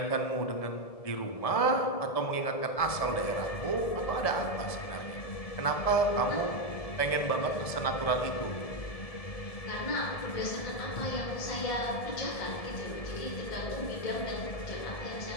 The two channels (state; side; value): late; right; 1.7 ms